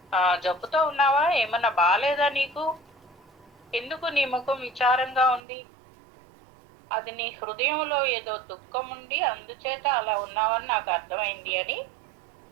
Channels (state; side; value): drops out; left; at 5.4 s